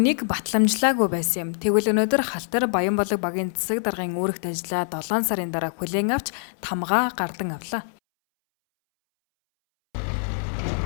батламжлаагүй байсан юм. Тэгвэл өнөөдөр Халтар Баянбалаг багийн засаг даргын үүрэгт ажиллаа 7 сарын дараа хүлээн авч тамгаа гардан авлаа.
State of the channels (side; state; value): right; silent; 62 dB below the other